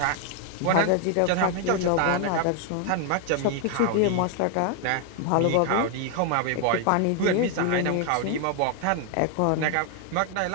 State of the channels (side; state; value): both; different; correlation 0.00